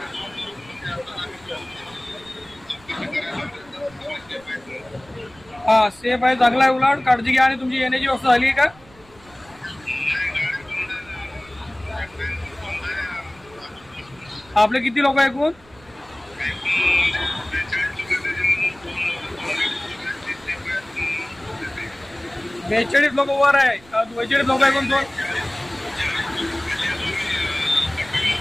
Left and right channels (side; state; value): right; noise; rumble, 26 dB below the sound